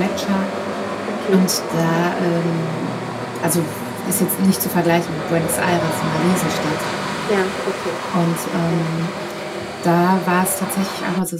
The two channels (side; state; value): both; identical; correlation 1.00